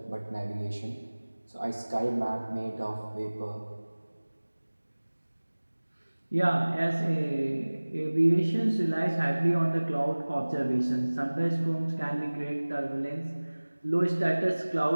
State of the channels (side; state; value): both; inverted; correlation -1.00